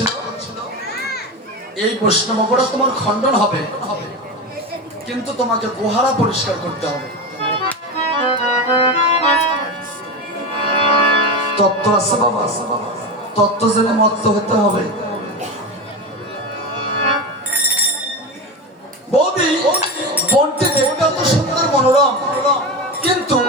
এই বৈষ্ণব অপরাধ তোমার খণ্ডন হবে, কিন্তু তোমাকে গোহারা পরিষ্কার করতে হবে। তত্ত্ব আছে বাবা, তত্ত্ব জেনে মত্ত হতে হবে। বৌদি, বনটি দেখতে এত সুন্দর মনোরম, কিন্তু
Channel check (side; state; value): both; normal; correlation 0.21